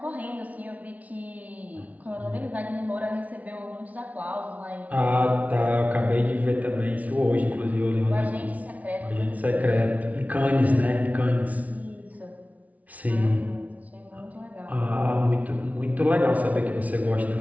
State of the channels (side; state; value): left; late; 0.070 ms